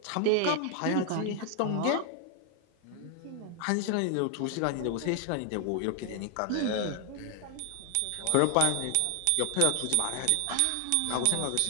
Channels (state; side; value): different; both; correlation 0.00